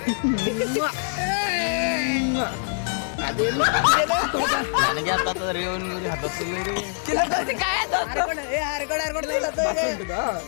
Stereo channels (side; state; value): right; silent; digital silence